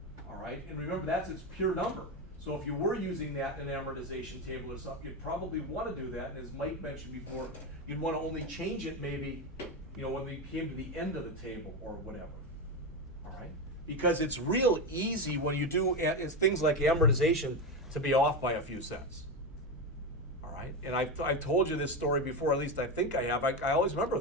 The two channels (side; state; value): both; normal; correlation 0.15